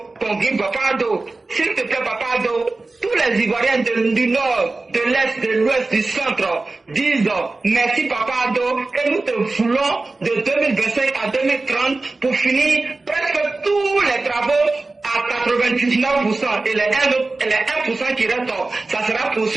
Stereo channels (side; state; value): left; quieter; 3.4 dB